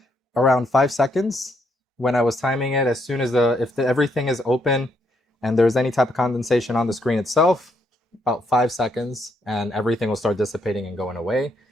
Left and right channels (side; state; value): both; normal; correlation 0.75